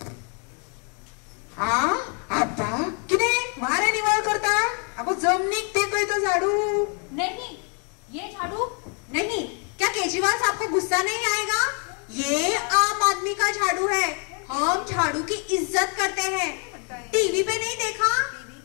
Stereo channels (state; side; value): quieter; right; 38.8 dB